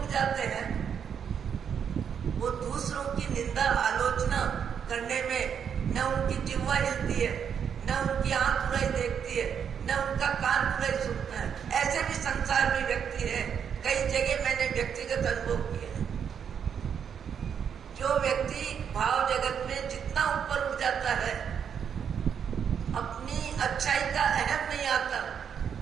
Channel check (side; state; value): left; quieter; 7.7 dB